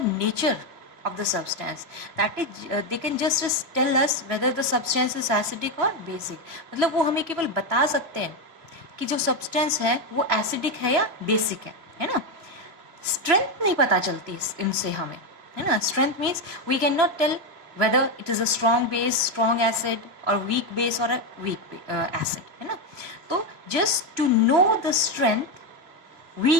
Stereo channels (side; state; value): left; late; 3.0 ms